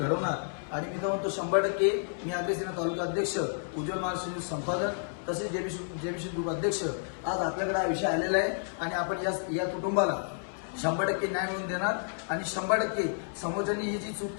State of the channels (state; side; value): silent; right; 57 dB below the other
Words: आणि मी तर म्हणतो 100% मी आगरी सेना तालुका अध्यक्ष, उज्ज्वल महाराष्ट्र संपादक तसेच जेबीशेठ ग्रुप अध्यक्ष, आज आपल्याकडे हा विषय आलेला आहे. आणि आपण या कुटुंबाला 100% न्याय मिळवून देणार आणि 100% समोरच्यांनी ही जी चूक